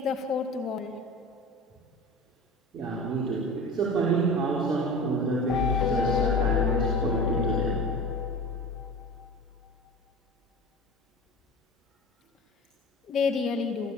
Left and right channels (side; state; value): both; normal; correlation 0.34